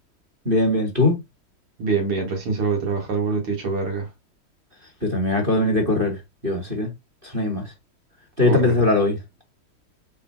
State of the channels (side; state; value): left; late; 2.5 ms